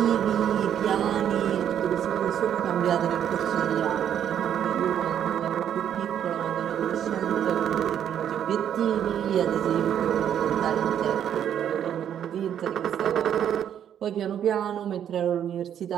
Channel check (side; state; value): left; quieter; 9.6 dB